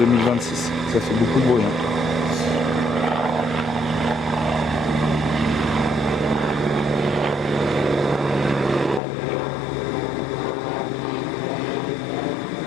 Ça fait beaucoup de bruit.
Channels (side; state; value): right; drops out; at 9.0 s